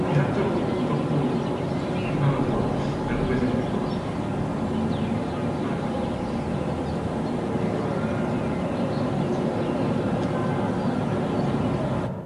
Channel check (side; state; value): both; identical; correlation 1.00